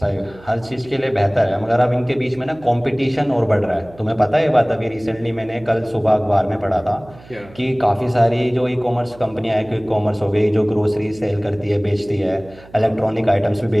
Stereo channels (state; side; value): noise; right; hum, 22 dB below the sound